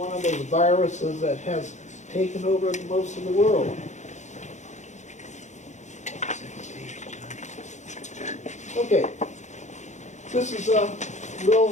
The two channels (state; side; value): late; right; 0.34 ms